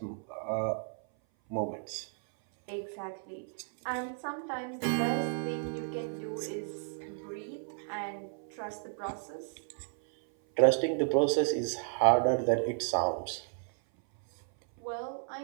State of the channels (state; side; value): silent; left; 56 dB below the other